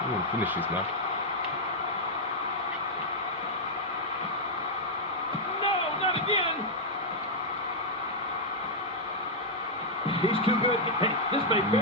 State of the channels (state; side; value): normal; both; correlation -0.04